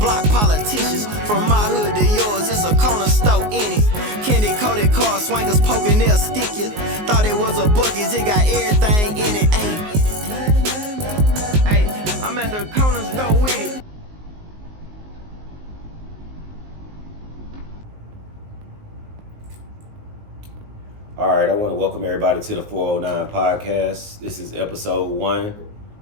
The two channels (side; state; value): left; late; 19 ms